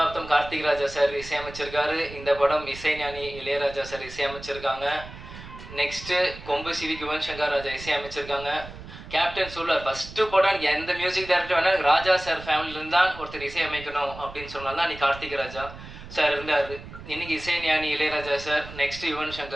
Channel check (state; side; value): noise; right; rumble, 14 dB below the sound